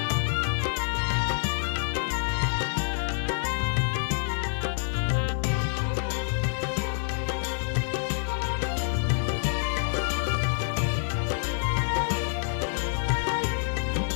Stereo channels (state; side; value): silent; right; 57 dB below the other